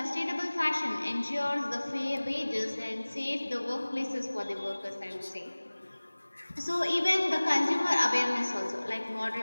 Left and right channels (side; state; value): both; inverted; correlation -1.00